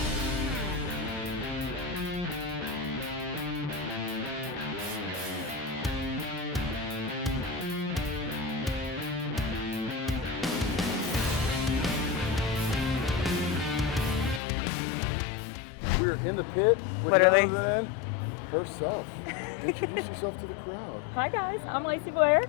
We're in the pit with Literally. none other than herself. Introduce yourself to the crowd. Hi guys, I'm Lacey Blair.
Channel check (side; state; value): right; drops out; at 14.4 s